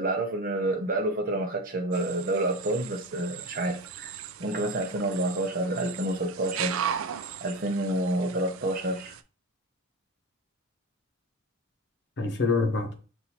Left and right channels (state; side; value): normal; both; correlation 0.24